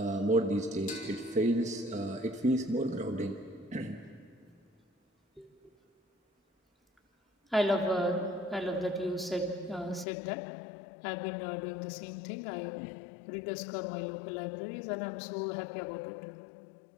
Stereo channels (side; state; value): right; drops out; at 10.1 s